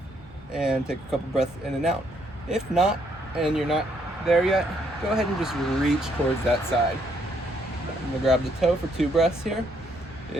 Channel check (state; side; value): normal; both; correlation 0.71